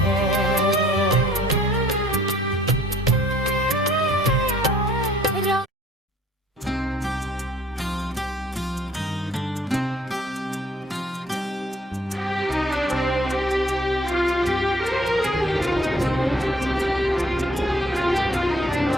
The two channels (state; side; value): normal; both; correlation 0.58